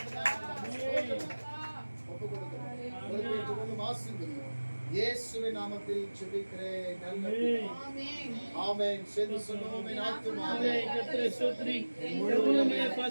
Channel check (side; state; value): both; inverted; correlation -1.00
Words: இயேசுவின் நாமத்தில் ஜெபிக்கிறேன். ஆமென். சேர்ந்து சொல்லுவோம். ஆமென். கர்த்தரை ஸ்தோத்திரி. முழுவதுமே